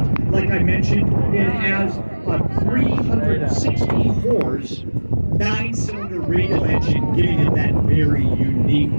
Like I mentioned, it has a 360 horse 9-cylinder radial engine, giving it that very unique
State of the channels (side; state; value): both; inverted; correlation -1.00